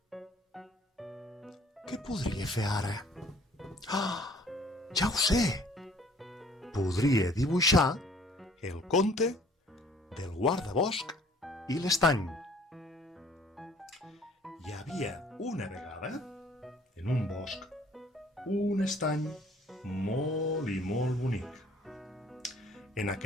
Què podria fer ara? Ah, ja ho sé! Podria dibuixar el conte del guardabosc i l'estany. Hi havia una vegada, en un bosc, un estany molt i molt bonic. En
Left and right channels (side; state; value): both; normal; correlation 0.56